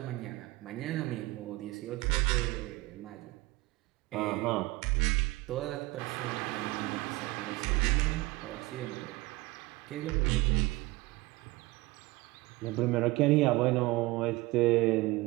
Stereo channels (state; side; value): quieter; left; 21.0 dB